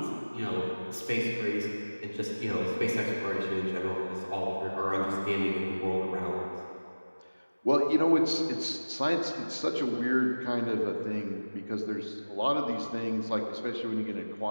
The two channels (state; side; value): inverted; both; correlation -1.00